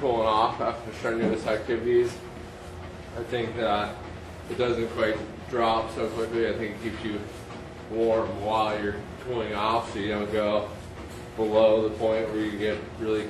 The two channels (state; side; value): identical; both; correlation 1.00